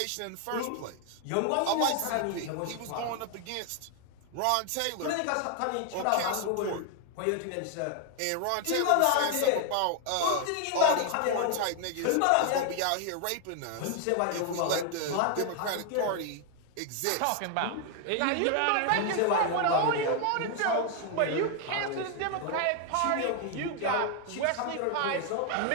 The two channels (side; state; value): both; different; correlation 0.00